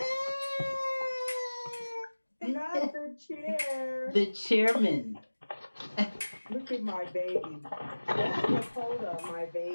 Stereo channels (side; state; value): both; inverted; correlation -1.00